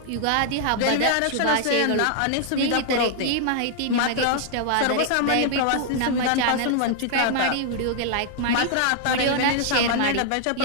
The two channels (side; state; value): both; different; correlation 0.00